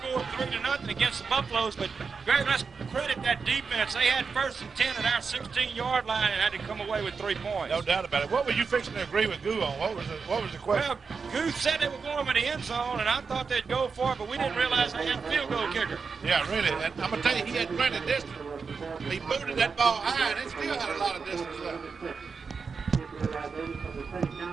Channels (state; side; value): quieter; left; 5.2 dB